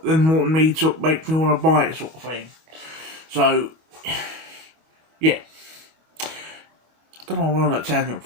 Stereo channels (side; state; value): left; late; 25 ms